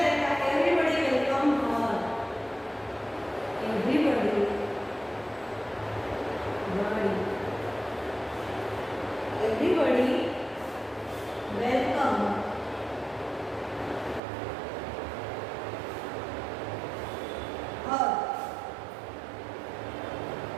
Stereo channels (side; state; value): left; drops out; at 14.2 s